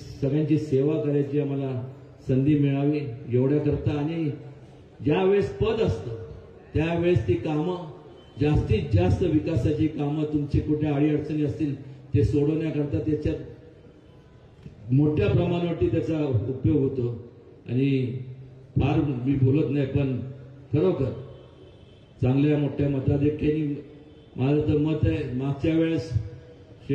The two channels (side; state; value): both; identical; correlation 1.00